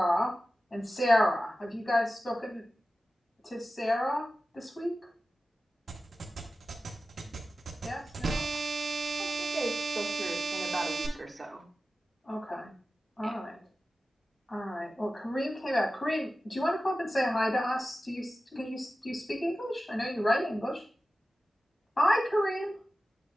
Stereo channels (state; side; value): normal; both; correlation 0.94